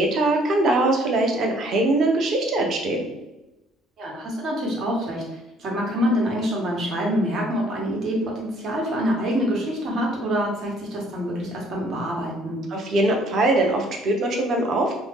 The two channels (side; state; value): both; normal; correlation 0.61